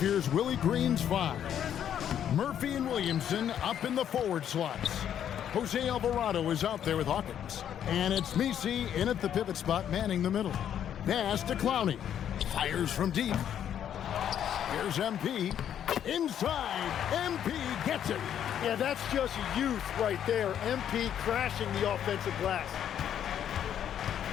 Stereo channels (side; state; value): right; quieter; 9.7 dB